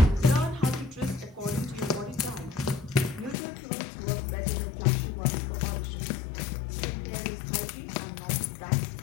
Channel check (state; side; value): drops out; right; at 3.4 s